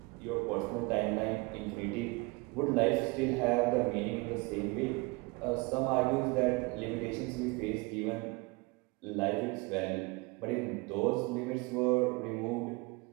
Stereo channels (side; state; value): left; quieter; 26.2 dB